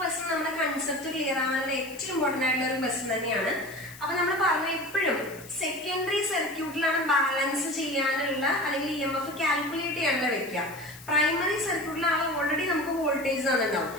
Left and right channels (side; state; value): left; noise; hiss, 18 dB below the sound